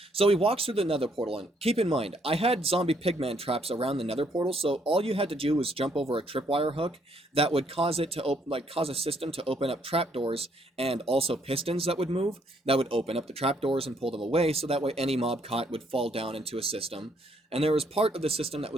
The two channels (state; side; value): normal; both; correlation 0.70